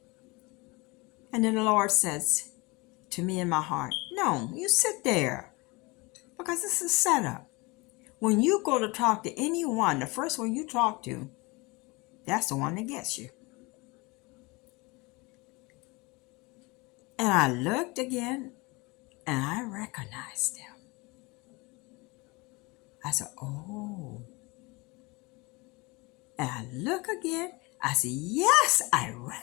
And then the Lord says to me in my heart, no, you sit there because this is set up. When you go to talk to anyone, the first one you talk to, that's the one that gets you. And I looked again and I recognized him. I said, oh. And I look again. I said, yes, I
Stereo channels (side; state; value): right; quieter; 25.3 dB